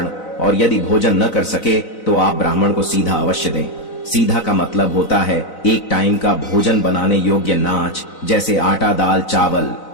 और यदि भोजन न कर सके तो आप ब्राह्मण को सीधा अवश्य दें। सीधा का मतलब होता है एक टाइम का भोजन बनाने योग्य नाच, जैसे आटा, दाल, चावल,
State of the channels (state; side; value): late; right; 4.0 ms